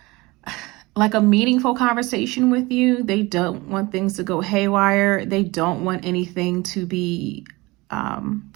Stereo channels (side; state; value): left; quieter; 22.4 dB